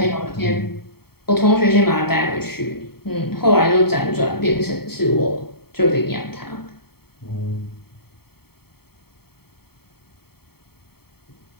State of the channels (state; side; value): late; right; 0.95 ms